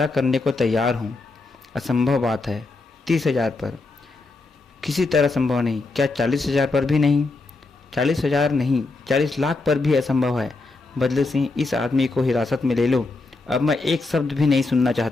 करने को तैयार हूँ। असंभव बात है। 30,000 पर किसी तरह संभव नहीं। क्या 40,000 पर भी नहीं? 40,000 नहीं, 40 लाख पर भी असंभव है। बदले सिंह, इस आदमी को हिरासत में ले लो। अब मैं एक शब्द भी नहीं सुनना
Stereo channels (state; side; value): quieter; right; 3.5 dB